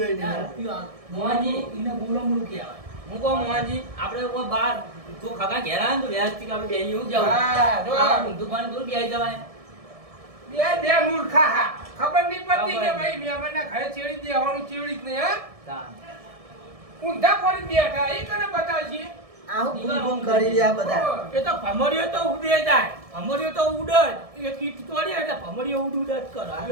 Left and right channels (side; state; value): left; late; 1.7 ms